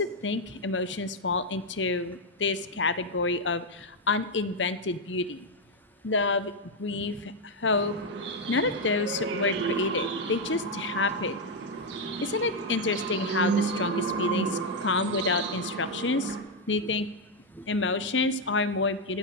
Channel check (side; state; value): both; normal; correlation 0.02